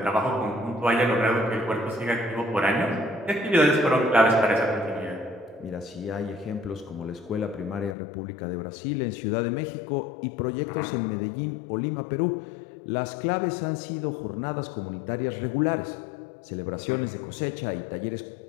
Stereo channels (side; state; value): right; drops out; at 8.0 s